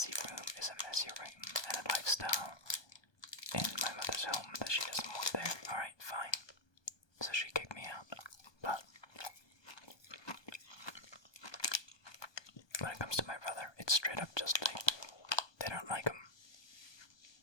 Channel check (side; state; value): right; late; 1.2 ms